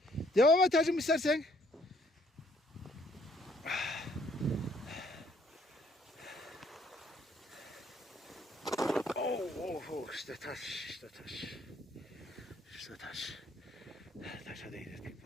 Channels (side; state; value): both; normal; correlation 0.64